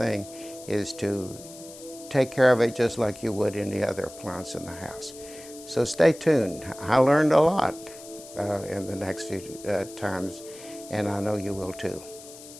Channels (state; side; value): noise; left; hiss, 17 dB below the sound